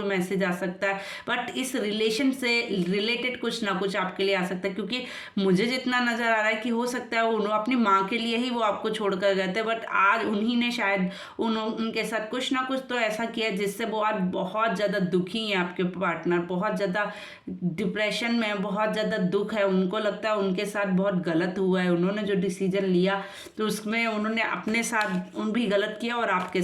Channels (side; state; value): both; identical; correlation 1.00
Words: मैसेज आ सकता है, बट इस रिलेशन से रिलेटेड कुछ ना कुछ आपके लिए आ सकता है। क्योंकि मुझे जितना नज़र आ रहा है कि हो सकता है उन्होंने अपनी माँ के लिए ही वो आपको छोड़कर गए थे, बट आज उन्हीं ने शायद उनके साथ कुछ ना कुछ तो ऐसा किया जिससे वो आज बहुत ज़्यादा दुखी हैं, आपके पार्टनर बहुत ज़्यादा डिप्रेशन में, बहुत ज़्यादा दुख है, उनको लगता है उनके साथ बहुत गलत हुआ है, उन्होंने जो डिसीजन लिया तो उसमें उन्होंने अपने साथ भी गलत किया और आपके